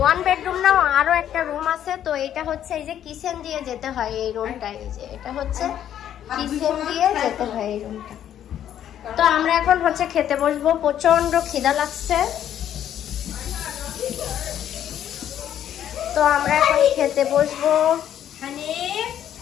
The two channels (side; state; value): right; quieter; 10.5 dB